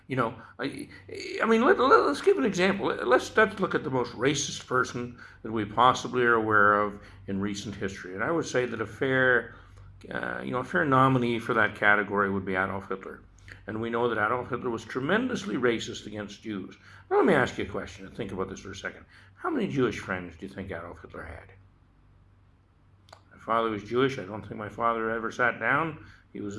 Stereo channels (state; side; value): identical; both; correlation 1.00